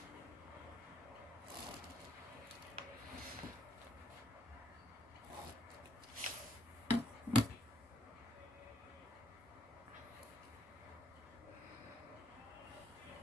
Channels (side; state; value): both; normal; correlation 0.72